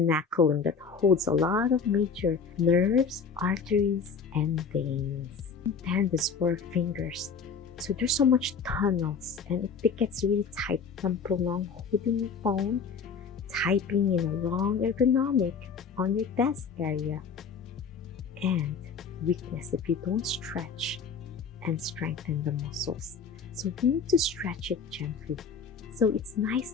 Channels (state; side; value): quieter; right; 5.6 dB